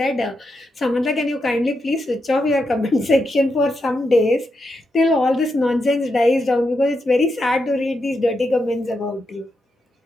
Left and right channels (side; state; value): both; normal; correlation 0.85